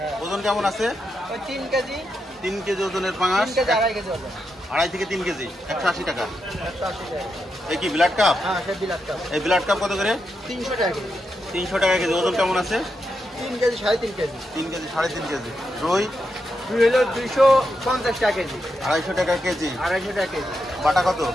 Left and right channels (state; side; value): normal; both; correlation 0.85